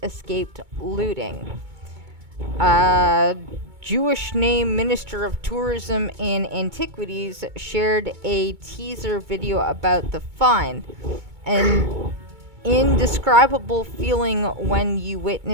escaped looting. Jewish name Minister of Tourism and Antiquities shared a teaser video about the find. An indescribable feeling when you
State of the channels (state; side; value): late; left; 2.2 ms